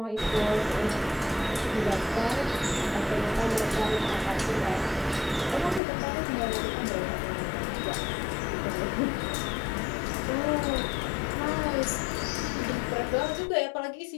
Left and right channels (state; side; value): drops out; right; at 5.8 s